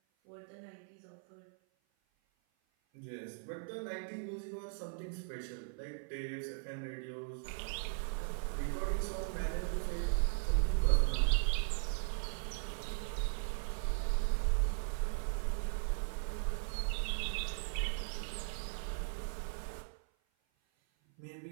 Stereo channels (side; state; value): left; silent; 52 dB below the other